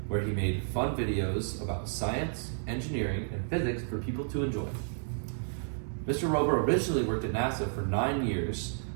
where he made fun videos about science, engineering, and physics for people to enjoy. Mr. Rober originally worked at NASA for 9 years,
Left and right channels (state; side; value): silent; left; digital silence